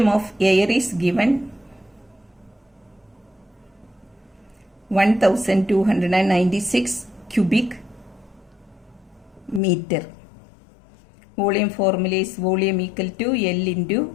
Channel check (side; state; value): right; drops out; at 9.6 s